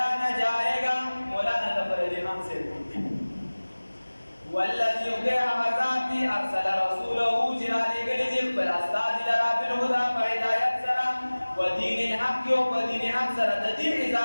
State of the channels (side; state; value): both; inverted; correlation -1.00